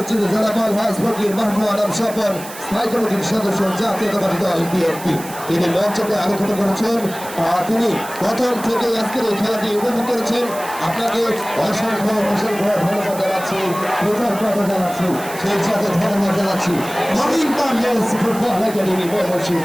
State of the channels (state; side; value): noise; right; hiss, 14 dB below the sound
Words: জনাব আলহাজ ফকির মাহমুদ আলম স্বপন স্থায়ী কমিটির সদস্য জাতীয়তাবাদী দল বিএনপি। তিনি মঞ্চকে আলোকিত করেছেন। তিনি প্রথম থেকে আজকের এই খেলাটি উপভোগ করেছেন। আপনাকে অসংখ্য অসংখ্য ধন্যবাদ জানাচ্ছি, কৃতজ্ঞতা জানাচ্ছি, সেই সাথে ধন্যবাদ জানাচ্ছি নবীন বাংলাদেশ ফুটবল একাডেমি ময়মনসিংহ।